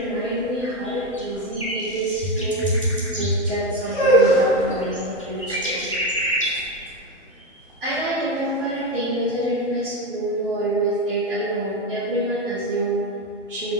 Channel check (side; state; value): both; normal; correlation 0.14